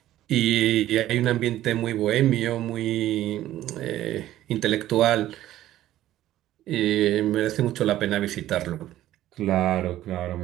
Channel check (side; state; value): left; quieter; 13.8 dB